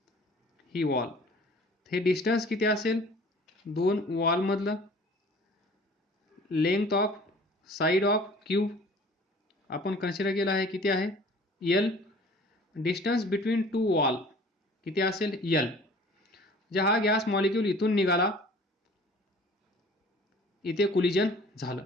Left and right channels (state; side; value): normal; both; correlation 0.48